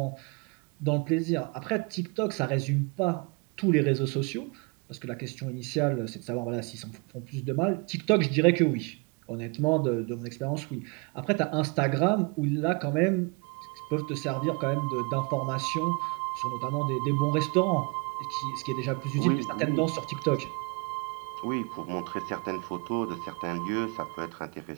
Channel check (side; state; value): left; quieter; 29.7 dB